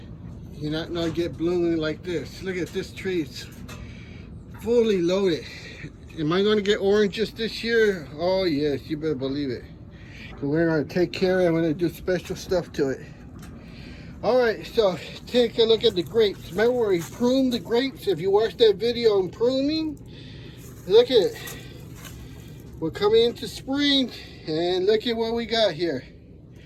you're not gonna get blooming like this. Look at this tree, it's fully loaded. Am I gonna get oranges this year? Oh yes, you better believe it. We're gonna take care of it, I'm gonna do special stuff to it. All right, so take a look at the grapes. Remember where we pruned the grapes? If you watched that video on pruning, look at it. We're coming into spring, and look at what we got here.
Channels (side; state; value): both; identical; correlation 1.00